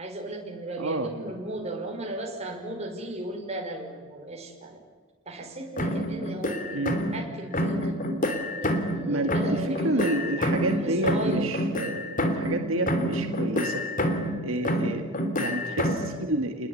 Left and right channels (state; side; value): normal; both; correlation 0.33